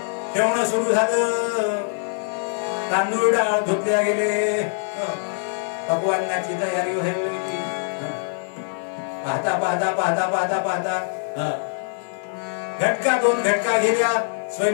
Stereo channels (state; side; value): silent; right; 62 dB below the other